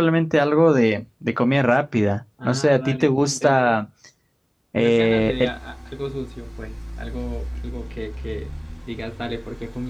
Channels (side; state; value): both; identical; correlation 1.00